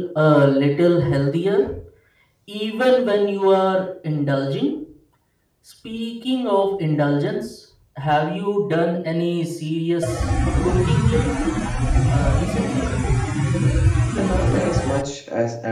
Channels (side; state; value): both; identical; correlation 1.00